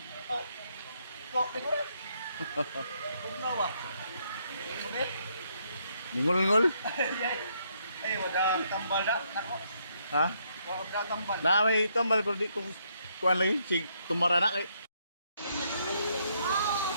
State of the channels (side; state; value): both; inverted; correlation -0.74